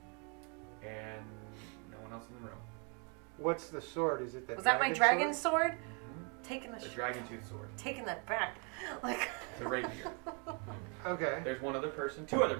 and no one else in the room. What's the sword? Is it the? Was that my dragon sword? Taking The dragon tooth sword. taking that back. It's a rapier. Okay. There's one other person, two other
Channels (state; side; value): quieter; left; 35.6 dB